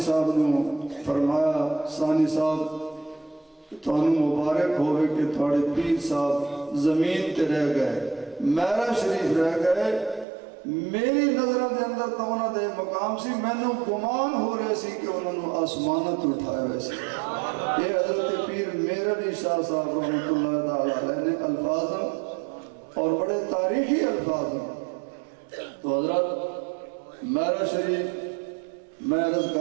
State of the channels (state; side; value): drops out; left; at 10.2 s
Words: صاحب نے فرمایا ثانی صاحب تانوں مبارک ہوئے کہ تھوڑے پیر صاحب زمین تے رہ گئے میرا شریف رہ گئے میری نظروں دے اندر تو انہوں دے مقام سی میں نے گمان ہو رہے سی کہ انہوں نے آسمانت اٹھائے ویسے یہ حضرت پیر میرا بھی شاہ صاحب رحمت اللہ تعالیٰ علیہ نے الفاظ اور بڑے تاریخی الفاظ ہیں تو حضرت میرا شریف میں عرض کر